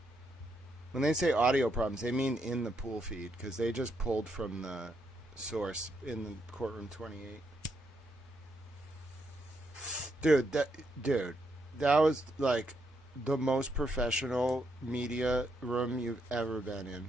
When they say audio problems, they mean in the pool feed, because they just pulled from the source in the courtroom 28. Dude, that was like the most professional media room you've ever been in.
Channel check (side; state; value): both; normal; correlation 0.78